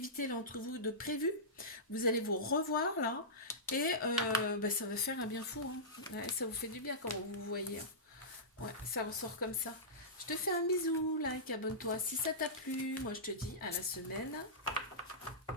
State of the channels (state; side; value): normal; both; correlation -0.17